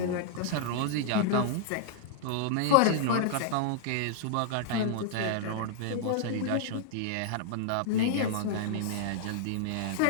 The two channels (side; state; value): both; different; correlation -0.01